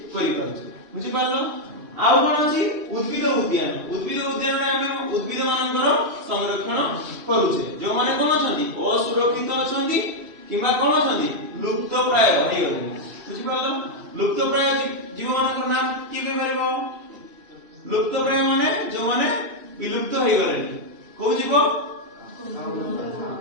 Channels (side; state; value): left; late; 2.7 ms